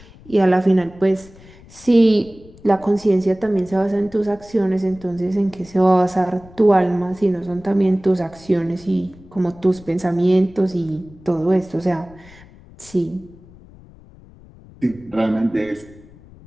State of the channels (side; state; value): left; noise; rumble, 22 dB below the sound